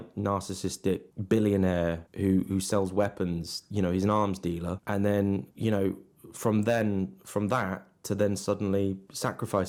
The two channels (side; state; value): both; identical; correlation 1.00